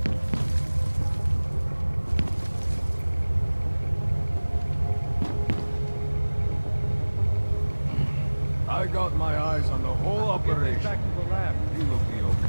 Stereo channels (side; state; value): both; inverted; correlation -1.00